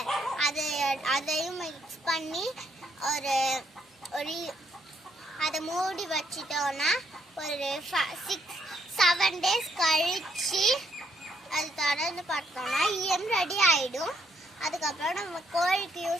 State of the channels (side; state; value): both; normal; correlation 0.72